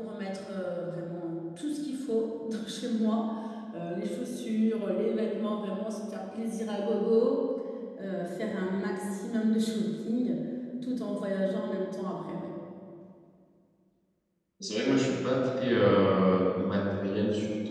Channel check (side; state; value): both; identical; correlation 1.00